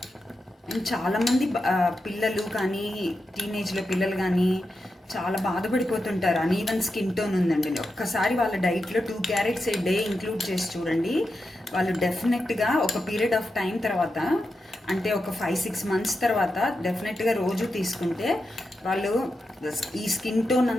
అండ్ చాలామంది పిల్లలు కానీ టీనేజ్లో పిల్లలు కానీ చాలా బాధపడిపోతుంటారు. అనీవెన్ స్కిన్ టోన్ ఉందండి. ఒక్కసారి వాళ్ళ డైట్లో 2 క్యారెట్స్ ఏ డే ఇంక్లూడ్ చేసి చూడండి. వాళ్ళు డెఫినెట్గా ఒక పీరియడ్ ఆఫ్ టైం తర్వాత, అంటే ఒక 5-6 months తర్వాత డెఫినెట్గా రోజు తీసుకుంటే వాళ్ళు ఈ స్కిన్ టోన్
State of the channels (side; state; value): both; normal; correlation 0.88